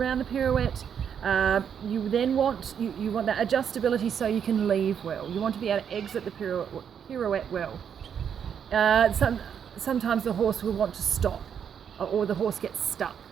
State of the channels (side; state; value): left; quieter; 8.0 dB